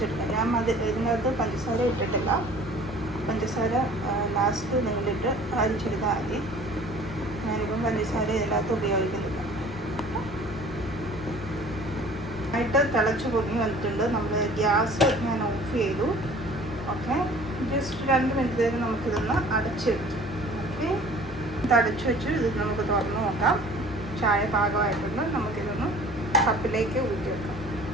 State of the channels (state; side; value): normal; both; correlation 0.49